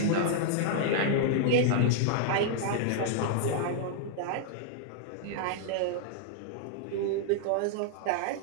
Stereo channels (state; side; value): different; both; correlation -0.01